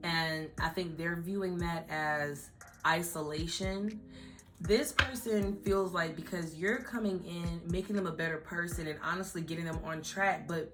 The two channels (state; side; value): identical; both; correlation 1.00